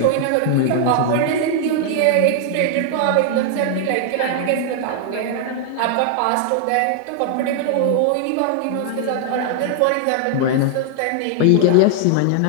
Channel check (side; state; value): both; different; correlation 0.00